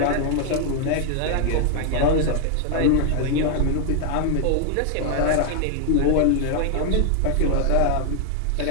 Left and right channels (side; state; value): both; different; correlation 0.00